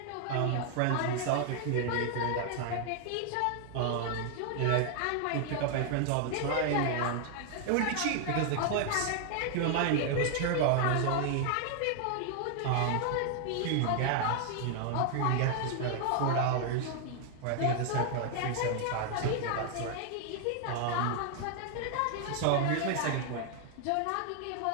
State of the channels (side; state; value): both; different; correlation 0.00